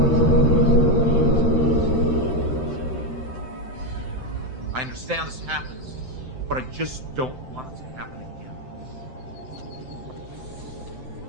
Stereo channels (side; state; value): left; late; 7.8 ms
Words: I understand this happens, but I just don't want it to happen again.